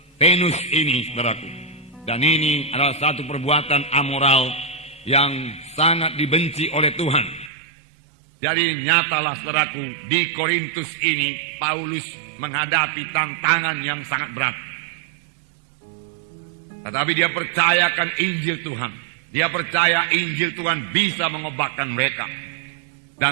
Venus ini, saudaraku. Dan ini adalah satu perbuatan amoral yang sangat dibenci oleh Tuhan. Jadi nyatalah, saudaraku, di Korintus ini Paulus menghadapi tantangan yang sangat berat. Tetapi dia percayakan Injil Tuhan. Dia percaya Injil Tuhan bisa mengobatkan mereka.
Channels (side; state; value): left; drops out; at 7.5 s